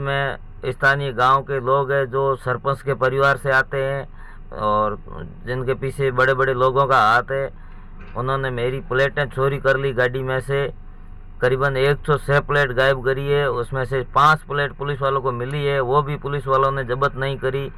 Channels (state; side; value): identical; both; correlation 1.00